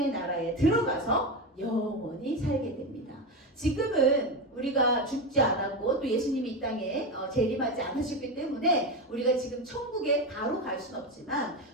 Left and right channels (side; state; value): both; normal; correlation 0.17